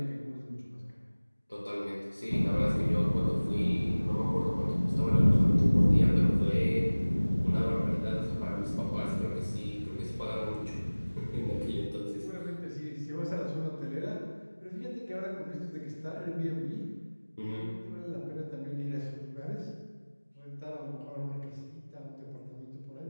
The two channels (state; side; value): inverted; both; correlation -1.00